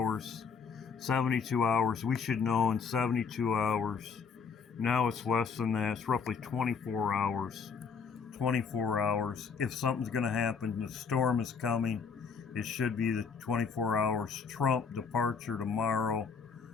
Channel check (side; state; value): right; quieter; 5.8 dB